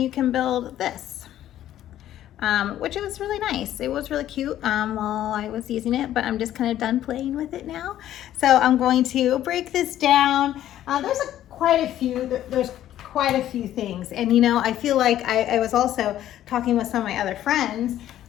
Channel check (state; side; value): quieter; right; 12.3 dB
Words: you can build this. Which was really nice. It was really cute while I was using it, but I'm just kind of done playing with it now. So I'm going to break this down. There's quite a few things. And I feel like I was also talking with some of my other friends.